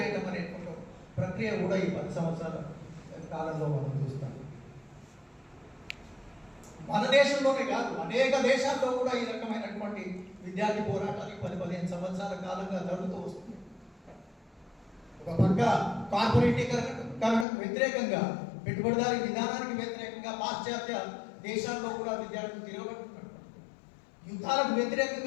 అనేటువంటి ప్రక్రియ కూడా ఈ 10 సంవత్సరాల కాలంలో మనం చూస్తాం. మన దేశంలోనే కాదు, అనేక దేశాల్లో కూడా ఈ రకమైనటువంటి విద్యార్థి పోరాటాలు 10-15 సంవత్సరాల కాలంగా జరుగుతూ వస్తుంది. ఒక పక్క కార్పొరేటీకరణకు వ్యతిరేకంగా, పెట్టుబడిదారీ విధానానికి వ్యతిరేకంగా పాశ్చాత్య దేశాల్లో కూడా విద్యార్థులు తిరగబడుతున్నారు. యుద్ధాలకు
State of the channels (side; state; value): right; drops out; at 17.4 s